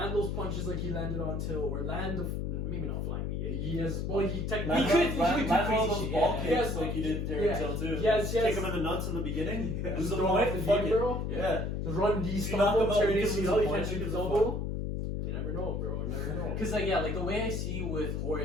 those punches like he landed on Till, or maybe not flying knee. He has, well, he technically Land all those shit, ball yeah. kicks Yes. like he did Darren Till too. Yes. Kick him in the nuts in the beginning. just Lose the throw off point. the Fuck knee, it. bro. Yeah. Just run D You knock him stumble, out, turn you can lose ACL, the you point, can't shoot you his can elbow. You never know, bro. You never know. Cause like yeah, like the way I see with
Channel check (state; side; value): noise; left; hum, 2 dB below the sound